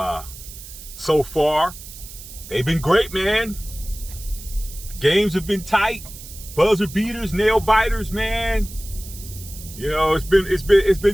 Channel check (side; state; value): right; noise; hiss, 15 dB below the sound